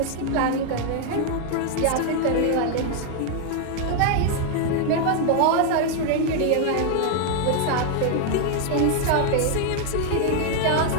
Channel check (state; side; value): different; both; correlation 0.00